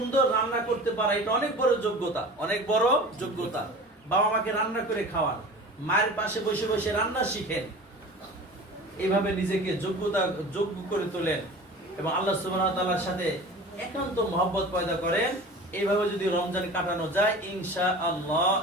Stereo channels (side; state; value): both; normal; correlation 0.38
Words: রান্না করতে পারা এটা অনেক বড় যোগ্যতা, অনেক বড় যোগ্যতা। বাবা মাকে রান্না করে খাওয়ান, মায়ের পাশে বসে বসে রান্না শিখেন, এইভাবে নিজেকে যোগ্য করে তোলেন এবং আল্লাহ সুবহানাহু ওয়া তাআলার সাথে একান্ত মহব্বত পয়দা করেন। এইভাবে যদি রমজান কাটানো যায়, ইনশাআল্লাহ